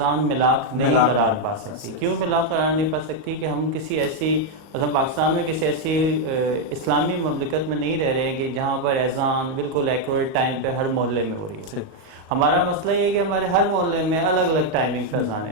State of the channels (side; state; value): left; late; 38 ms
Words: ملاک نہیں قرار پا سکتی. کیوں ملاک قرار نہیں پا سکتی؟ کہ ہم کسی ایسی مثلا پاکستان میں کسی ایسی اسلامی مملکت میں نہیں رہ رہے ہیں کہ جہاں پر اذان بالکل ایکوریٹ ٹائم پہ ہر محلے میں ہو رہی ہو. ہمارا مسئلہ یہ ہے کہ ہمارے ہر محلے میں الگ الگ ٹائمنگ پہ اذانیں